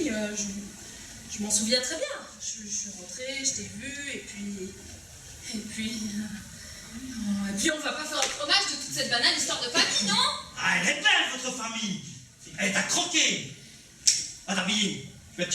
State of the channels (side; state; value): both; identical; correlation 1.00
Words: je m'en souviens très bien. Je suis rentrée, je t'ai vu, et puis... Et puis on va pas faire un fromage de toute cette banale histoire de famille, non? Ah, elle est belle, votre famille. Elle t'a croqué. Va t'habiller. Je vais te